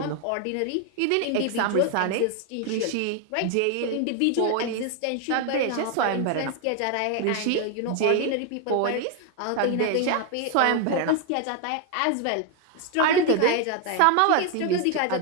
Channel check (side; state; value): both; different; correlation 0.01